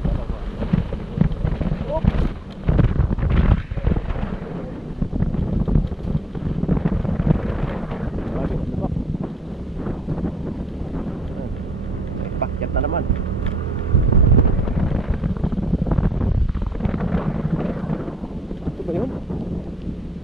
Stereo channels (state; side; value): normal; both; correlation 0.72